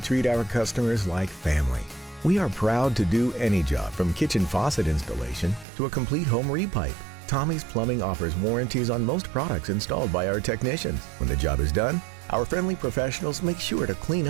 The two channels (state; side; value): drops out; left; at 5.7 s